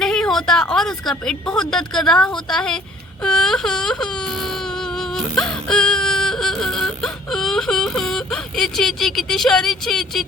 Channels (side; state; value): both; normal; correlation 0.55